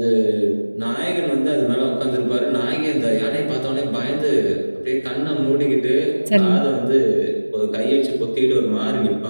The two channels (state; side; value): inverted; both; correlation -1.00